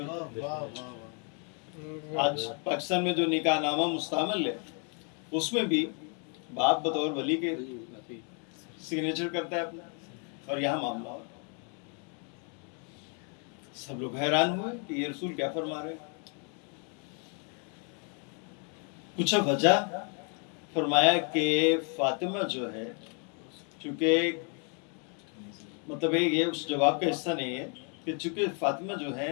ہے۔ واہ واہ واہ، آج پاکستان میں جو نکاح نامہ مستعمل ہے اس میں بھی باپ بطور ولی کے سگنیچر کرتا ہے اپنا، اور یہاں معاملہ ہو۔ سب لوگ حیران ہوئے کہ یہ رسول کیا فرما رہے ہیں۔ پوچھا وجہ، فرمایا کہ فاطمہ جو ہے، چونکہ مطلب یہ اس جواب کا حصہ نہیں ہے کہ چونکہ فاطمہ جو ہے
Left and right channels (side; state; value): right; quieter; 39.6 dB